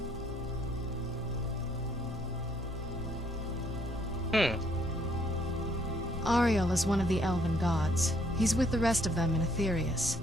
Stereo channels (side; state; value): both; normal; correlation 0.67